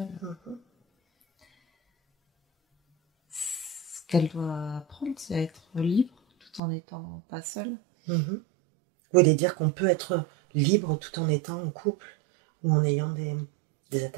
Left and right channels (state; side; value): drops out; left; at 6.6 s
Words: Ce qu'elle doit apprendre, c'est à être libre tout en n'étant pas seule. Vous voulez dire qu'on peut être libre tout en étant en couple ou en ayant des